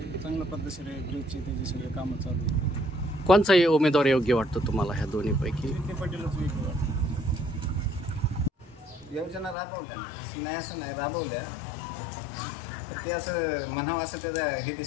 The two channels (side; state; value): right; drops out; at 9.6 s